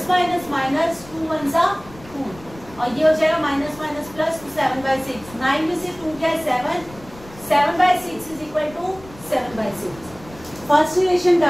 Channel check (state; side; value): noise; left; rumble, 20 dB below the sound